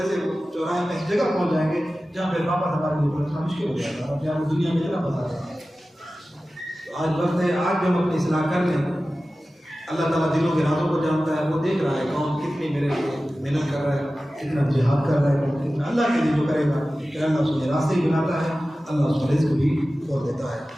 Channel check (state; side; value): normal; both; correlation 0.95